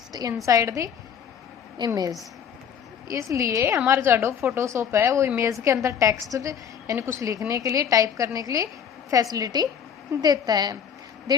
inside the image। इसलिए हमारा जो एडोब फोटोशॉप है वो इमेज के अंदर टेक्स्ट यानी कुछ लिखने के लिए, टाइप करने के लिए फैसिलिटी देता है।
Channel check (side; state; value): right; quieter; 7.8 dB